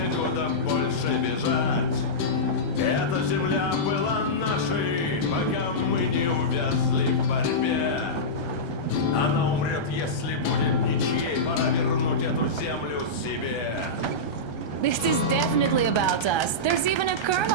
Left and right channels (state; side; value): late; right; 1.3 ms